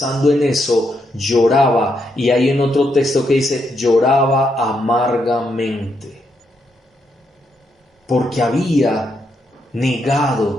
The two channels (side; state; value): both; normal; correlation 0.79